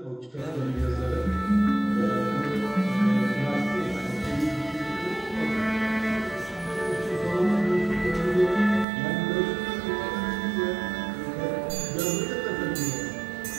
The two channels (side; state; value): left; drops out; at 8.8 s